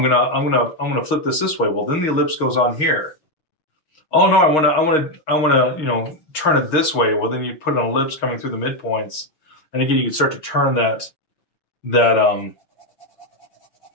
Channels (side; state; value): right; late; 6.5 ms